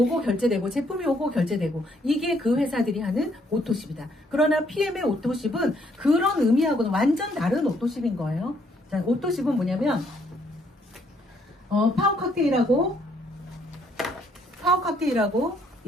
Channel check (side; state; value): both; normal; correlation 0.69